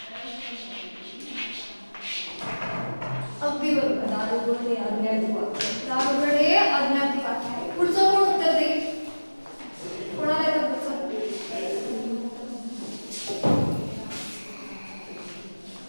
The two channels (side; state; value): both; inverted; correlation -1.00